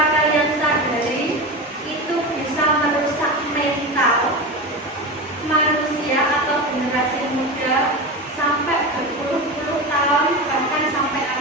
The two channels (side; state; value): both; normal; correlation 0.23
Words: kalian sadari itu bisa merusak mental manusia atau generasi muda sampai berpuluh-puluh tahun, bahkan sampai